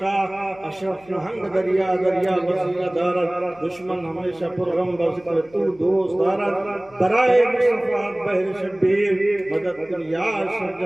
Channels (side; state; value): left; noise; hum, 27 dB below the sound